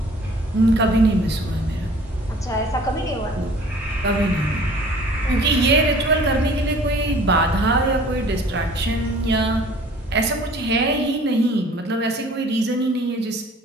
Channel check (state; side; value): normal; both; correlation 0.50